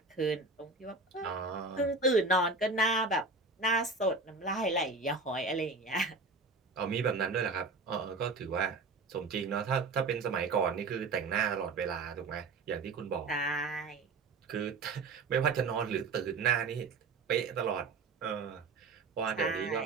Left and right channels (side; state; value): left; quieter; 3.9 dB